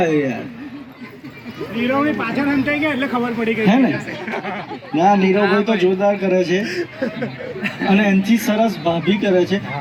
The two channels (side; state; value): both; identical; correlation 1.00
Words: યાર નીરવની પાછળ હંતાઈ ગયા એટલે ખબર પડી ગઈ હે ને ના નીરવભાઈ તો જોરદાર કરે છે અને એનાથી સરસ ભાભી કરે છે